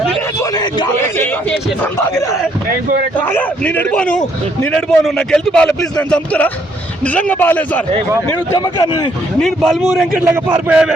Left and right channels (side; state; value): both; normal; correlation 0.69